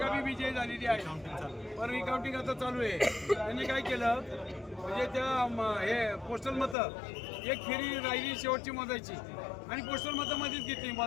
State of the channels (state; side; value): drops out; right; at 6.8 s